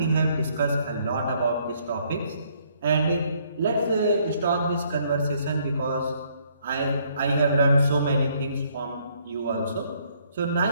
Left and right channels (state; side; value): inverted; both; correlation -0.67